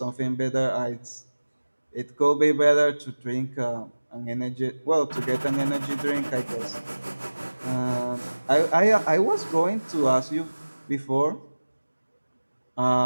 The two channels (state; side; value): inverted; both; correlation -1.00